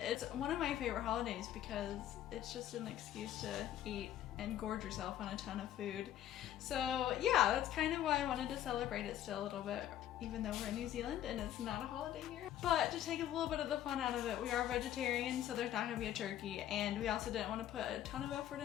one of my favorite holidays because it's just an excuse to eat and gorge yourself on a ton of food. So yeah, that's kind of why I wanted to celebrate it still a little bit, even though we're in New Zealand and it's not a holiday here. But to take a little bit of the fun out of it, we are vegetarian, so there's not going to be a turkey, and we also didn't want to put a ton of effort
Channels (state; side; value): quieter; right; 11.8 dB